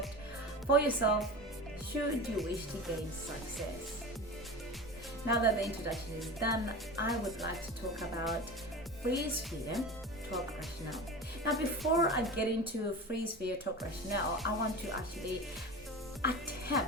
for yourself should you wish to gain success. Now that the introduction is done, I would like to talk about freeze fear, talk rationale. Now, before I get into freeze fear, talk rationale, I want to actually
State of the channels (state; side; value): normal; both; correlation 0.31